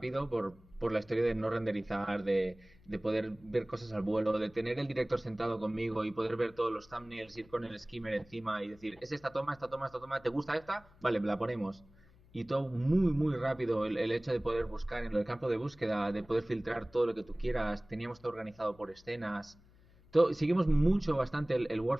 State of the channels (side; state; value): left; noise; hum, 27 dB below the sound